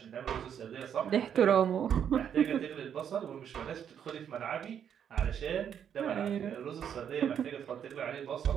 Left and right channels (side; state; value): left; quieter; 8.6 dB